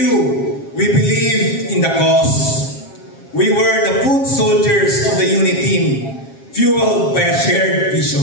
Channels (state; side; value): late; right; 7.4 ms